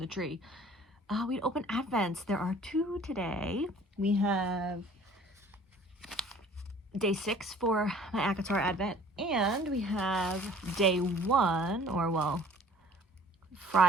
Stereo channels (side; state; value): both; normal; correlation 0.51